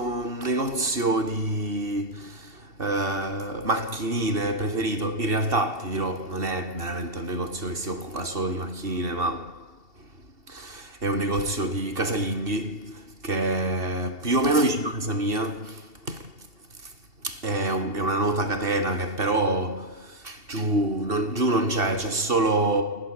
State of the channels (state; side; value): late; left; 2.7 ms